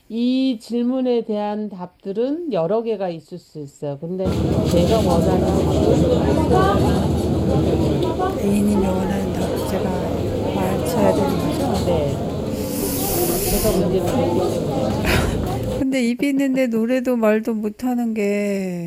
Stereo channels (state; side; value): identical; both; correlation 1.00